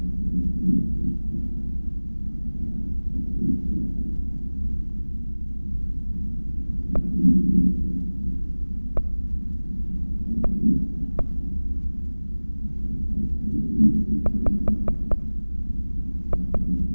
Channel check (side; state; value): both; inverted; correlation -1.00